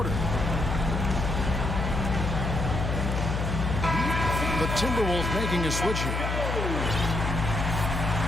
The Timberwolves making a switch here.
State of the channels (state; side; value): noise; left; hum, 1 dB below the sound